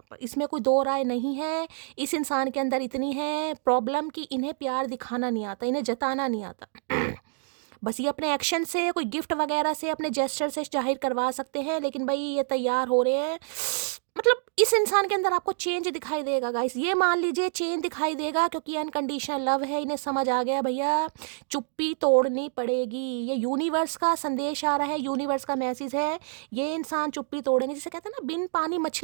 पर, इसमें कोई दो राय नहीं है। इस इंसान के अंदर इतनी है प्रॉब्लम कि इन्हें प्यार दिखाना नहीं आता, इन्हें जताना नहीं आता। बस ये अपने एक्शन से, कोई गिफ्ट वगैरह से, अपने जेस्चर से जाहिर करवा सकते हैं, लेकिन भाई ये तैयार हो रहे हैं। मतलब इस इंसान के अंदर आपको चेंज दिखाई देगा गाइस, ये मान लीजिए चेंज दिखाई देगा, क्योंकि अनकंडीशनल लव है। इन्हें समझ आ गया भैया चुप्पी तोड़नी पड़ेगी। ये यूनिवर्स का संदेश आ रहा है, यूनिवर्स का मैसेज है, ये इंसान चुप्पी तोड़ेंगे। जिसे कहते हैं ना बिन पानी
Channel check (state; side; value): silent; left; digital silence